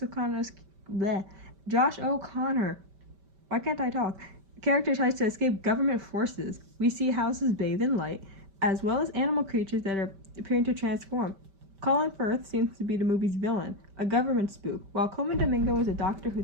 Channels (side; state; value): left; late; 5.2 ms